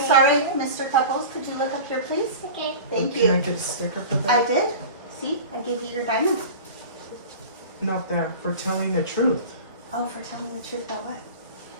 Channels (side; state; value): both; inverted; correlation -0.35